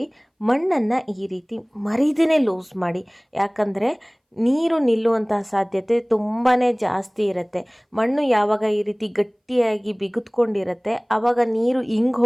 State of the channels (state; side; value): identical; both; correlation 1.00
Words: ಮಣ್ಣನ್ನು ಈ ರೀತಿ ಮರಿದೇ ಲೂಸ್ ಮಾಡಿ, ಯಾಕಂದರೆ ನೀರು ನಿಲ್ಲುವಂತಹ ಸಾಧ್ಯತೆ ತುಂಬಾ ಜಾಸ್ತಿ ಇರುತ್ತೆ. ಮಣ್ಣು ಯಾವಾಗ ಈ ರೀತಿ ಗಟ್ಟಿಯಾಗಿ ಬಿಗಿದ್ಕೊಂಡಿರುತ್ತೆ ಆವಾಗ ನೀರು ಹಿಂಗೆ